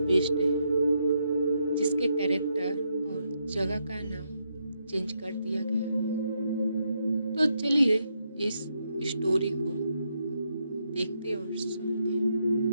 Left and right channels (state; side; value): inverted; both; correlation -0.80